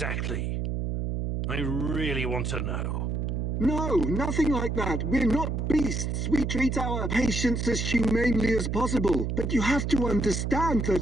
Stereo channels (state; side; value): noise; right; hum, 1 dB below the sound